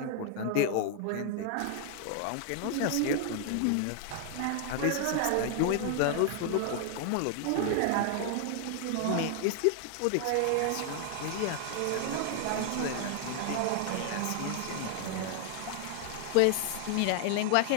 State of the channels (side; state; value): both; different; correlation 0.00